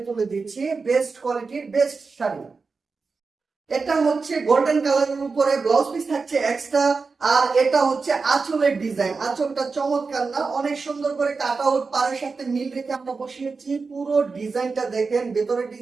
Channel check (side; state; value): left; quieter; 4.5 dB